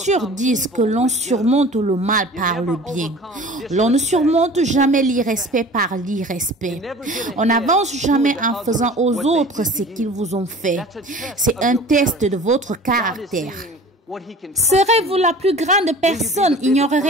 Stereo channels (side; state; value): both; normal; correlation 0.43